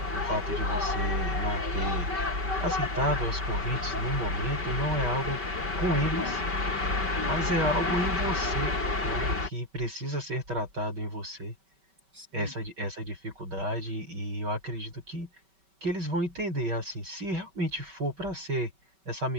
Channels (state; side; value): late; left; 5.2 ms